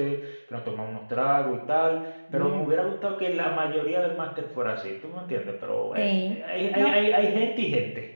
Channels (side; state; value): both; inverted; correlation -1.00